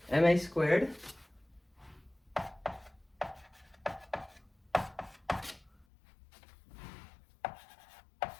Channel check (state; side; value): drops out; right; at 5.9 s